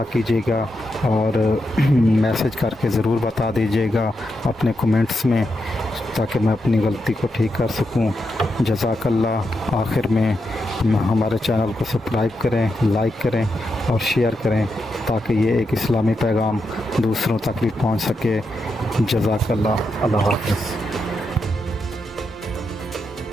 کیجیے گا اور میسج کر کے ضرور بتا دیجیے گا اپنے کومنٹس میں، تاکہ میں اپنی غلطی کو ٹھیک کر سکوں۔ جزاک اللہ۔ آخر میں ہمارے چینل کو سبسکرائب کریں، لائک کریں اور شیئر کریں تاکہ یہ ایک اسلامی پیغام دوسروں تک بھی پہنچ سکے۔ جزاک اللہ۔ اللہ حافظ۔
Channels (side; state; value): both; normal; correlation 0.85